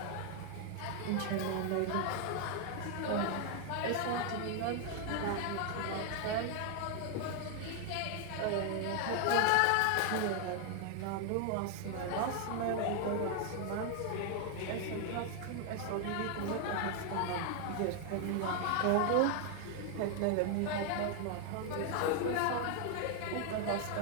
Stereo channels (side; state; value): both; different; correlation 0.00